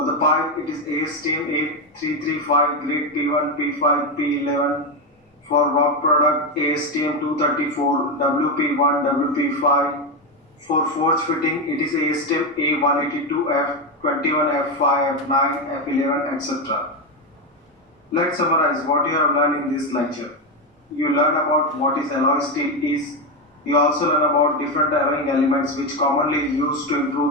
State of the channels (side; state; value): both; normal; correlation 0.10